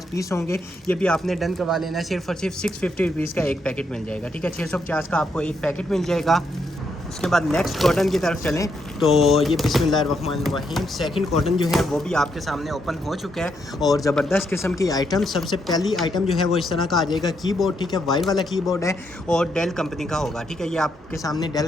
पीस होंगे। ये भी आपने डन करवा लेना है। सिर्फ और सिर्फ 650 रुपीज़ का एक पैकेट मिल जाएगा, ठीक है। 650 का आपको एक पैकेट मिल जाएगा। उसके बाद नेक्स्ट कॉटन की तरफ चलें तो ये बिस्मिल्लाहिर्रहमानिर्रहीम सेकंड कॉटन जो है वो भी आपके सामने ओपन हो चुका है। और ज़बरदस्त किस्म की आइटम, सबसे पहली आइटम जो है वो इस तरह का आ जाएगा कीबोर्ड, ठीक है। वाइट वाला कीबोर्ड है और डेल कंपनी का होगा, ठीक है। ये आपके सामने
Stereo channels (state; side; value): normal; both; correlation 0.78